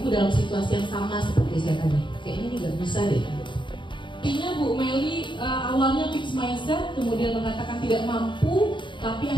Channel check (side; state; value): right; late; 0.23 ms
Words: Ibu dalam situasi yang sama seperti saya tadi? Kayaknya ini nggak bisa deh. Artinya Bu Meli awalnya fixed mindset, kemudian mengatakan tidak mampu, tapi